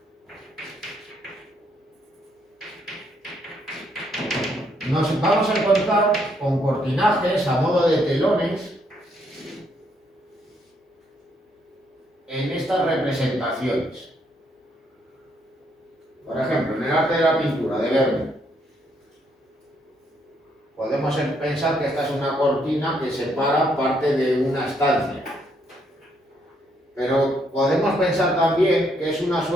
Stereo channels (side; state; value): both; normal; correlation 0.72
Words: nos vamos a encontrar con cortinajes a modo de telones en estas representaciones. Por ejemplo, en el arte de la pintura de Vermeer, podemos pensar que esta es una cortina que separa parte de una estancia. Pero podemos pensar también que es una